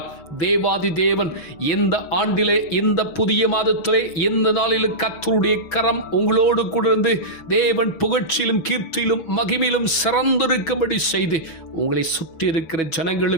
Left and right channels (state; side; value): late; right; 6.1 ms